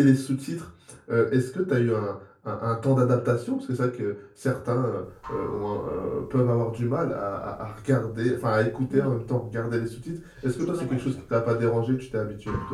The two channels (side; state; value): both; identical; correlation 1.00